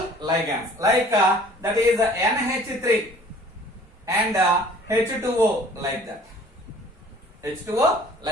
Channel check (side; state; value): both; normal; correlation 0.51